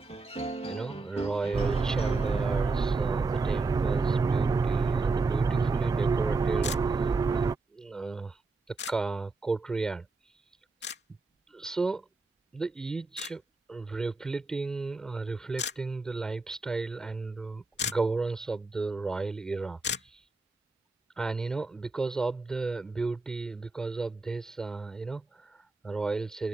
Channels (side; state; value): left; quieter; 3.6 dB